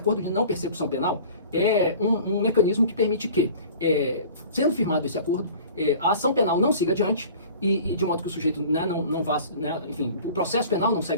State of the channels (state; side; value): inverted; both; correlation -0.44